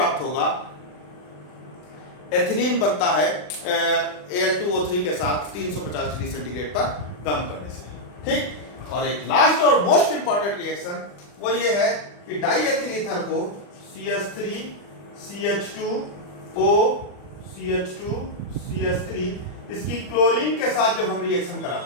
होगा। एथिलीन बनता है Al2O3 के साथ 350 डिग्री सेंटीग्रेड पर गर्म करने से, ठीक। और एक लास्ट और मोस्ट इंपॉर्टेंट रिएक्शन वो ये है कि डाइएथिल ईथर को CH3 CH2O CH2 CH3, इसकी क्लोरीन के साथ जब हम रिएक्शन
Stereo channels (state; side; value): late; right; 40 ms